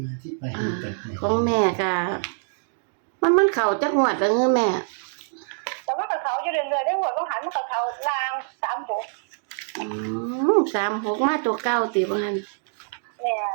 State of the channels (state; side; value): silent; left; digital silence